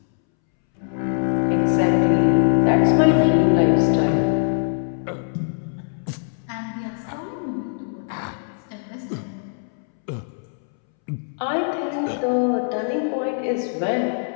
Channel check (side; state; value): right; silent; 64 dB below the other